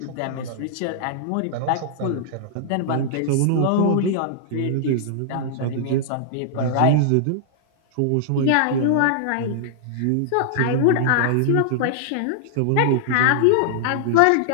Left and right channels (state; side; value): different; both; correlation -0.01